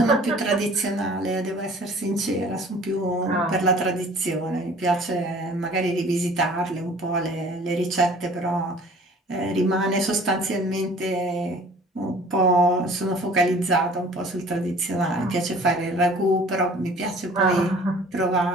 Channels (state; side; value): normal; both; correlation 0.49